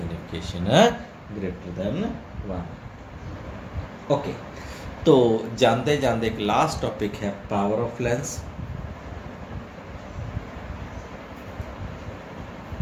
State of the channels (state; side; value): identical; both; correlation 1.00